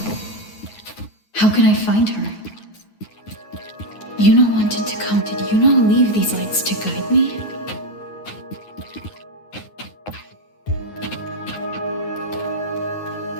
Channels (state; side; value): late; right; 9.5 ms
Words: How can I find her? Iuno wanted to come. Did Iuno leave these lights to guide me?